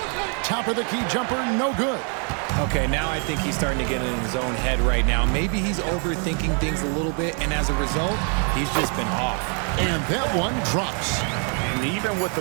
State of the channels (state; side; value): quieter; left; 40.0 dB